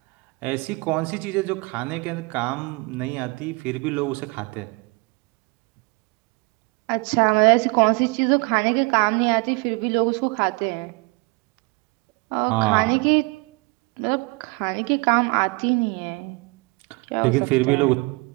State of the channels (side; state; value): left; quieter; 28.7 dB